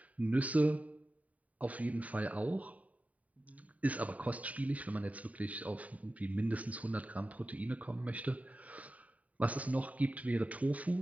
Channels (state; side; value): late; left; 0.070 ms